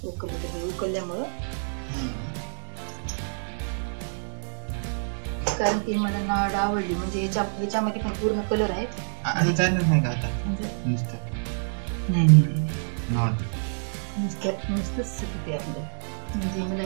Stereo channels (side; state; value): left; silent; 60 dB below the other